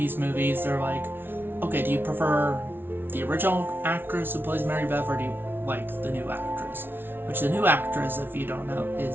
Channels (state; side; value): late; left; 0.10 ms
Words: they're like, okay, do you prefer the original actress who plays Mary Beth, or do you like the new actress? Which the new actress, if you don't know,